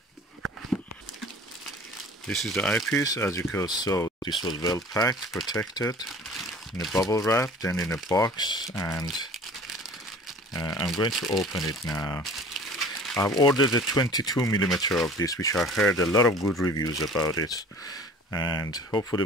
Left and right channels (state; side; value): normal; both; correlation 0.45